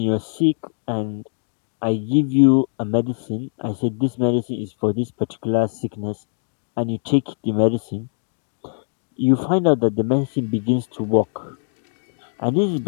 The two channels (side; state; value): right; silent; 64 dB below the other